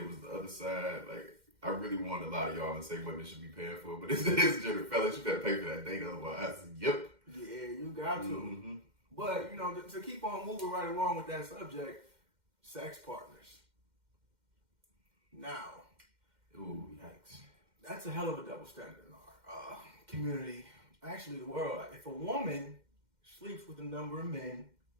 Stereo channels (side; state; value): left; late; 2.1 ms